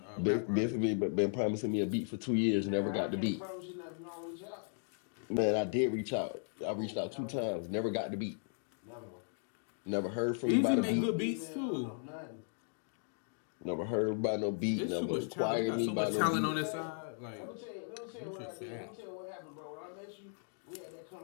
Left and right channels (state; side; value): silent; right; 53 dB below the other